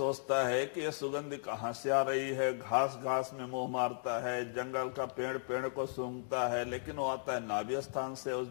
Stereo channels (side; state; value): right; silent; digital silence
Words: है कि ये सुगंध कहाँ से आ रही है। घास में मुंह मारता है, जंगल का पेड़ को सूंघता है, लेकिन वो आता है नाभि स्थान से। उस